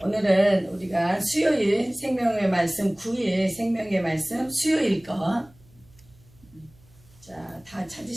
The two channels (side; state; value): right; noise; hum, 28 dB below the sound